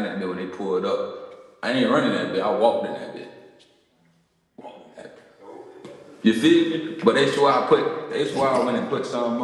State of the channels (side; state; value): both; identical; correlation 1.00